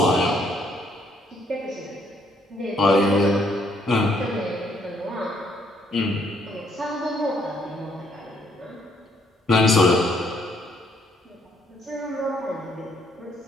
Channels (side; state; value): both; normal; correlation 0.69